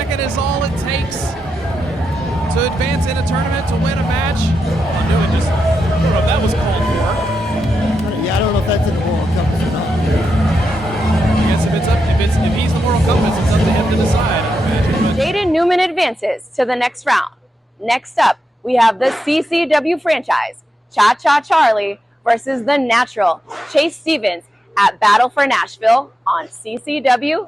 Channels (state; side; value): normal; both; correlation 0.86